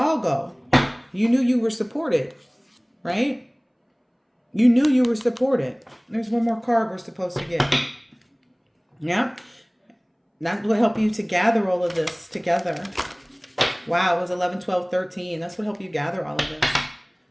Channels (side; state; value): both; identical; correlation 1.00